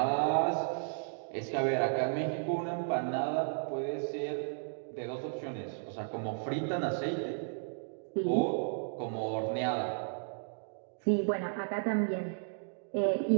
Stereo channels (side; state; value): left; silent; digital silence